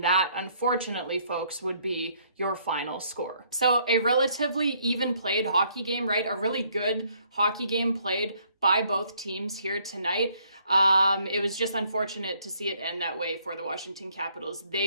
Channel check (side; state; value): both; inverted; correlation -0.67